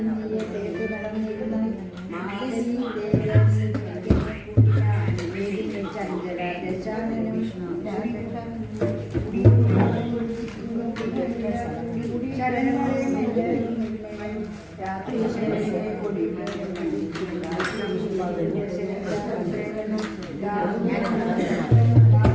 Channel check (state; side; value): identical; both; correlation 1.00